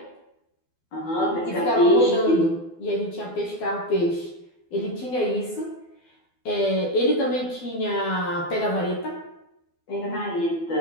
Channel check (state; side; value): late; right; 12 ms